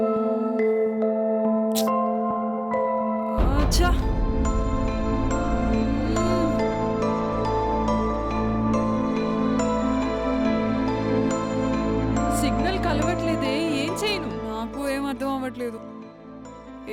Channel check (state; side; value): identical; both; correlation 1.00